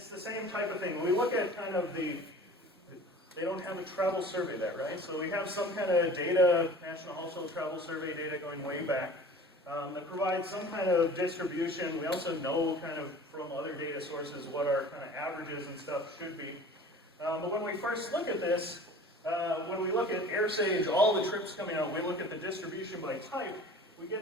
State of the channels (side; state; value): both; normal; correlation 0.43